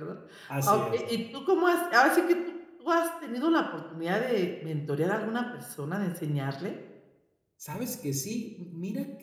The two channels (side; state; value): both; identical; correlation 1.00